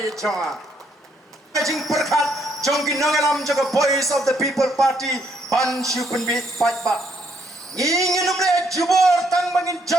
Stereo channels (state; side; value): normal; both; correlation 0.71